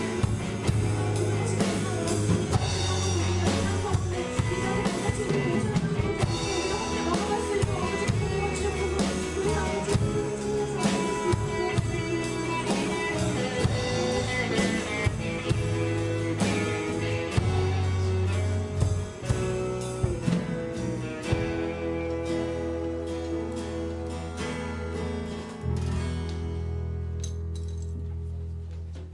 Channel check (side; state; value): both; identical; correlation 1.00